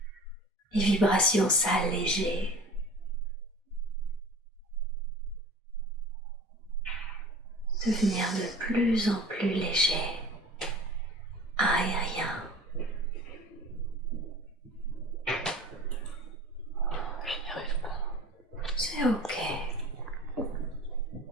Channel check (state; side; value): normal; both; correlation 0.40